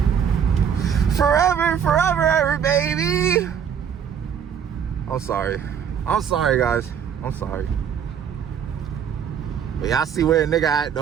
Forever, forever, ever, baby. I'm sorry. I'm sorry, guys. I'm sorry. But y'all see where a nigga at,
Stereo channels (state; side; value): quieter; left; 8.0 dB